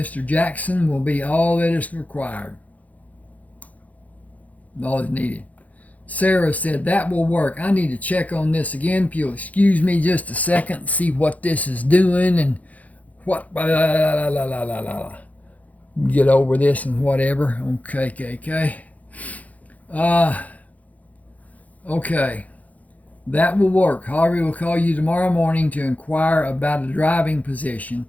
Jackson will be all that is required. All is needed. Sarah said, that will work. I need to check on this again. If you'll excuse me just a second and see what this is doing and what. Get over this and whatever. Okay. Okay, that will work. Harvey will call you tomorrow morning to inquire about a driving position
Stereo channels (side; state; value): right; late; 0.074 ms